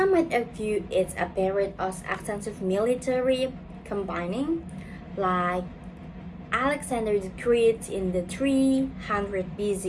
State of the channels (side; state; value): both; identical; correlation 1.00